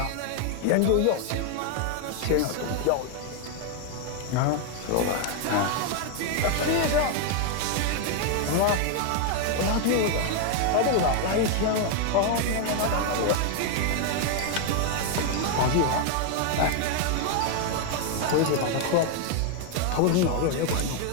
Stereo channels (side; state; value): both; different; correlation 0.01